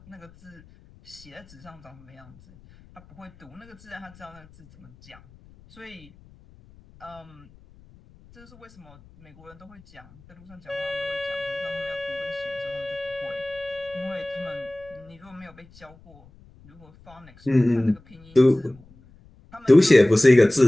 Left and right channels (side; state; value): left; noise; rumble, 25 dB below the sound